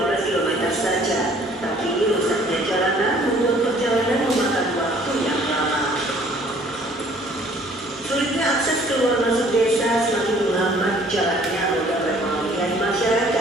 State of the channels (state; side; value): normal; both; correlation 0.56